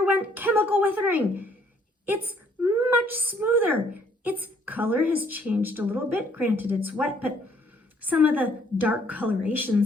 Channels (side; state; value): both; normal; correlation 0.64